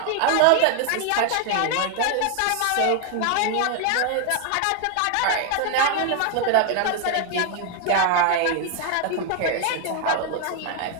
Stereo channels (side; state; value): both; different; correlation 0.01